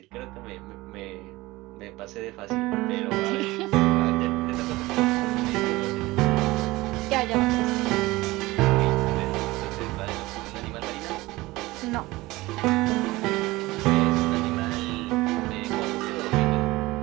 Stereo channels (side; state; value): left; quieter; 19.9 dB